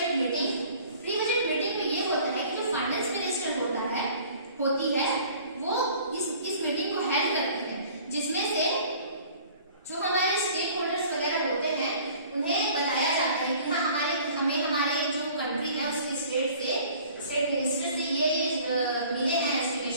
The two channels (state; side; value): inverted; both; correlation -0.50